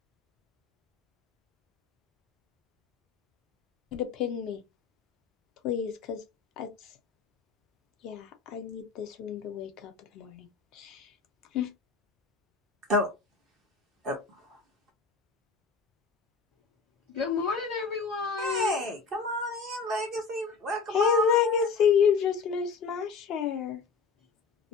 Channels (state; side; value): quieter; right; 5.1 dB